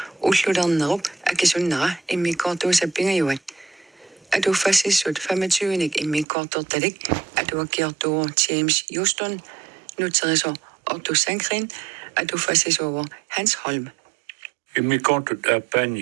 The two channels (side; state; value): left; drops out; at 6.2 s